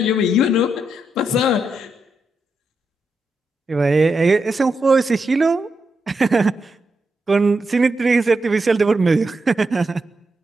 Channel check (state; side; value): normal; both; correlation 0.84